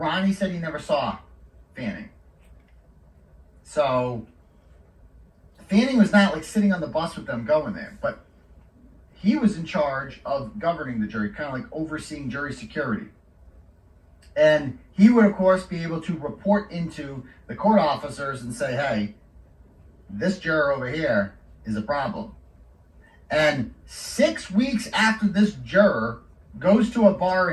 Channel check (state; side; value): identical; both; correlation 1.00